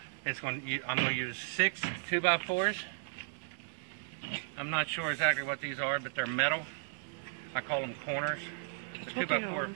I'm going to use 6 2x4s. I'm not sure exactly what these are, but they're metal. I call them corners. The 2x4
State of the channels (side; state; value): left; silent; digital silence